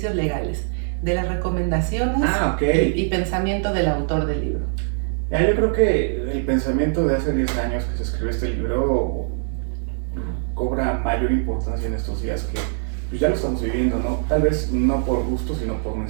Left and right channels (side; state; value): left; silent; digital silence